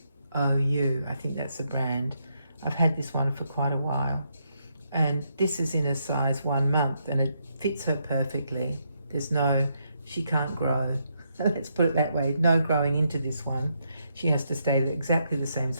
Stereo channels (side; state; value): both; inverted; correlation -0.78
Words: I think that's the brand. I've had this one for quite a while, and this is in a size 1 month, and it fits her perfectly. She can't grow. Let's put it that way. No growing into this one. She has to stay exactly the same